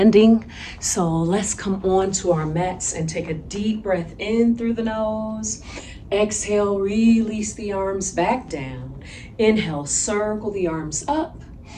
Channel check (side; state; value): both; identical; correlation 1.00